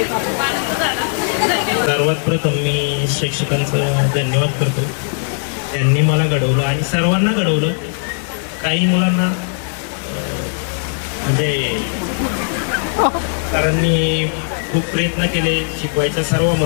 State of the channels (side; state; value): right; silent; 67 dB below the other